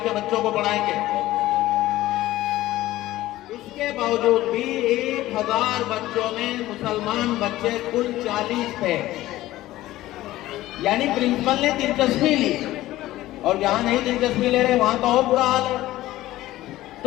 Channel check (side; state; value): right; quieter; 16.0 dB